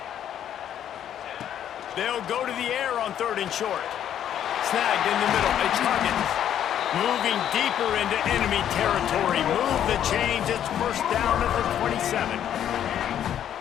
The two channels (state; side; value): quieter; right; 10.2 dB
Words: They'll go to the air on 3rd and short. Snagged in the middle. It's Huggins. Moving deeper into enemy territory. Move the chains. It's first down at the 27.